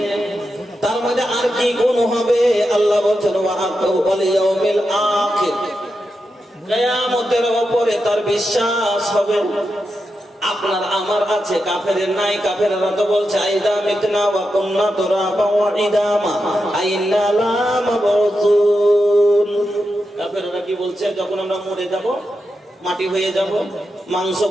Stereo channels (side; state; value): both; normal; correlation 0.87